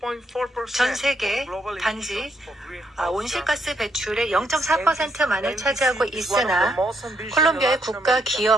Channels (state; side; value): normal; both; correlation 0.76